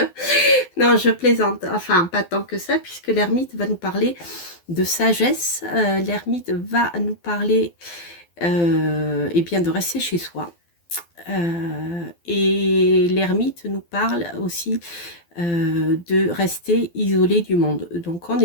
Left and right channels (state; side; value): late; right; 12 ms